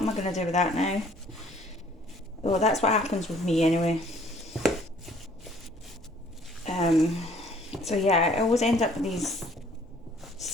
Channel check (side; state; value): both; normal; correlation 0.57